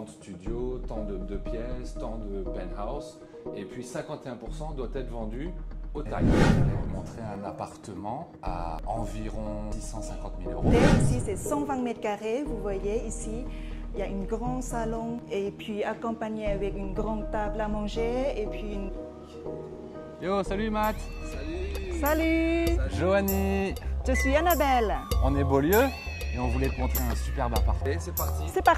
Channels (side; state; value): both; identical; correlation 1.00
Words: de studios, tant de pièces, tant de penthouse. Et puis 51% doit être vendu au Thaï. Je vais vous montrer un appartement à environ 650 000 euros. Ici, c'est 120 mètres carrés. Vous voyez ici, il y a un grand salon et puis accompagné avec une grande table à manger et puis une... Yo, salut Matt. Salut. Joanie. Je suis Annabelle. On est Beaulieu et on voulait te montrer un superbe appartement. Et c'est parti. C'est